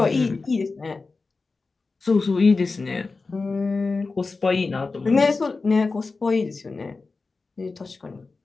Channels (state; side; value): quieter; right; 4.0 dB